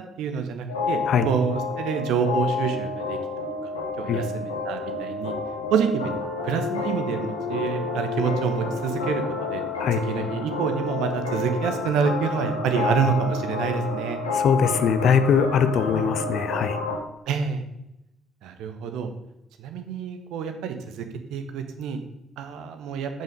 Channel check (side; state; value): both; normal; correlation 0.50